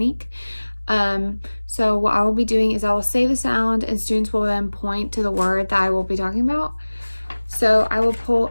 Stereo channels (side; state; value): both; inverted; correlation -1.00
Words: So what I will be doing is I will say the sound and students will then point to the word that I will be talking about. So I will pull